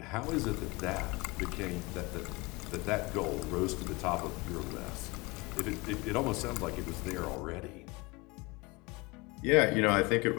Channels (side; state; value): right; quieter; 25.2 dB